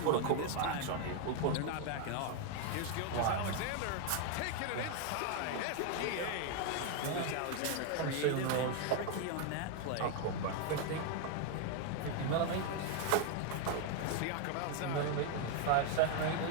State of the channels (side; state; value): both; different; correlation 0.01